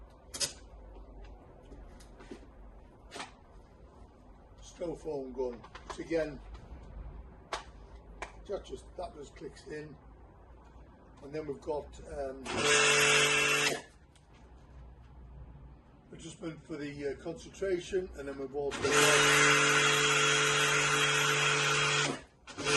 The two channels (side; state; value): both; identical; correlation 1.00